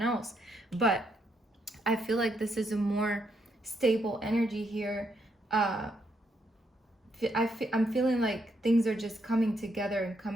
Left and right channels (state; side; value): normal; both; correlation 0.77